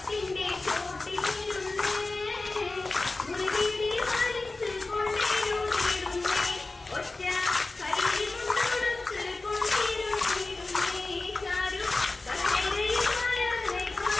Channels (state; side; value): quieter; right; 3.3 dB